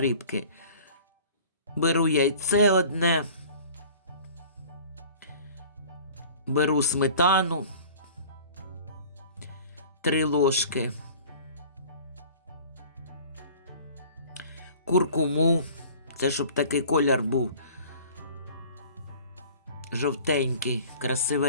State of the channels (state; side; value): inverted; both; correlation -0.46